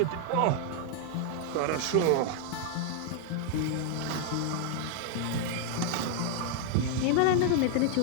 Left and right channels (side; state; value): both; different; correlation 0.00